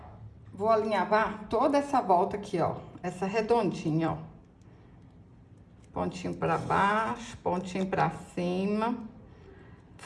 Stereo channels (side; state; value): both; identical; correlation 1.00